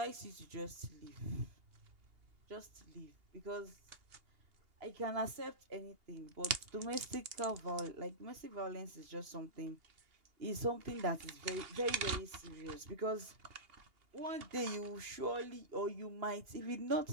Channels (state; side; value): late; left; 2.8 ms